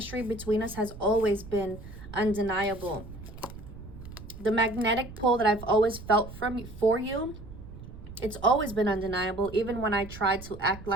between us has always been undeniable. The magnetic pull that I've always felt for you, it's always been undeniable, even when I tried to act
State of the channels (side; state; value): right; noise; rumble, 14 dB below the sound